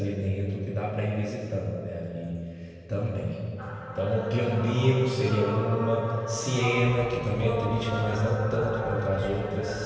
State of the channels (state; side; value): identical; both; correlation 1.00